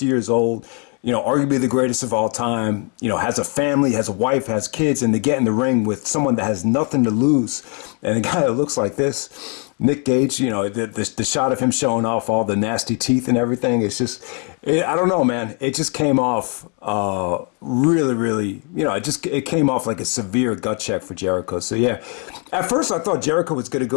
years old, arguably the greatest of all time, has a family, has a wife, has kids, and to get in the ring with someone that has nothing to lose, and a guy that looks like this, Nick Gage, the shot of him showing off all the nasty teeth and everything, it's just, I don't know, man. It just came off really, really, it came off like a severe gut check for Jericho. So yeah, at first I thought Jericho was going to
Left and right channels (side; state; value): right; quieter; 38.1 dB